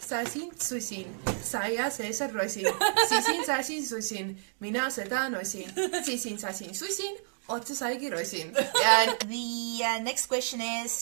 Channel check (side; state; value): left; silent; digital silence